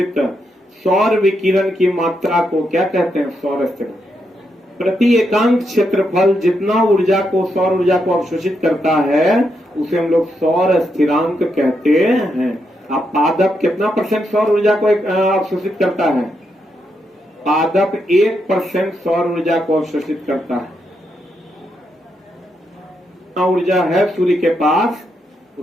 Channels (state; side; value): normal; both; correlation 0.81